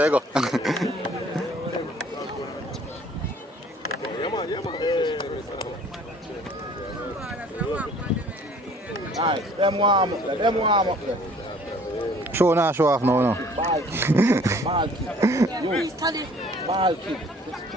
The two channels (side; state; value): both; normal; correlation 0.54